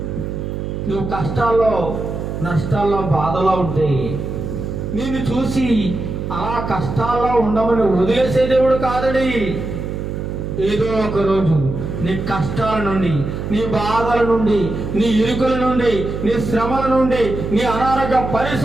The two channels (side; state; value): right; noise; hum, 5 dB below the sound